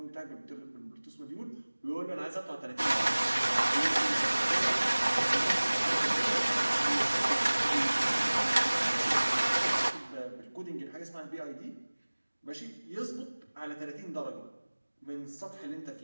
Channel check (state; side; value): inverted; both; correlation -1.00